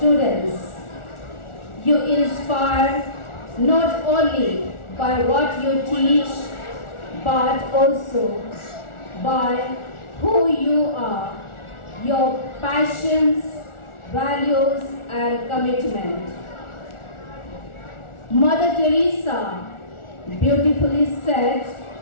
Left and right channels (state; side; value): late; right; 1.4 ms